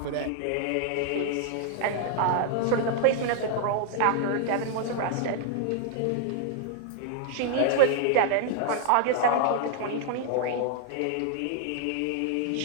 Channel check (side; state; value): both; different; correlation -0.01